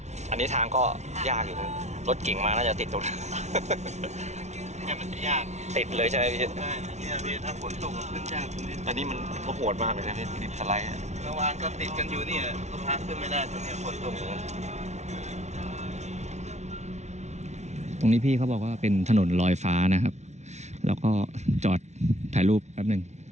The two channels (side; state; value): left; late; 0.32 ms